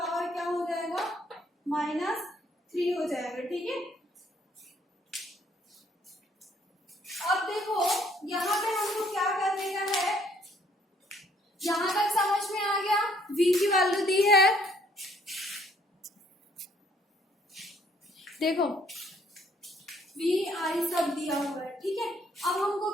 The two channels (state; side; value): normal; both; correlation 0.65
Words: क्या हो जाएगा, -3 हो जाएगा, ठीक है। अब देखो यहाँ पे हमको क्या करने का है, यहां तक समझ में आ गया। V की वैल्यू दी है, देखो V I सब दिया हुआ है, ठीक है। अब हमको